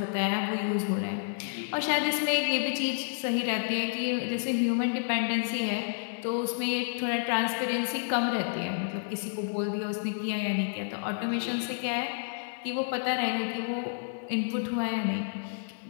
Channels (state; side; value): silent; right; 58 dB below the other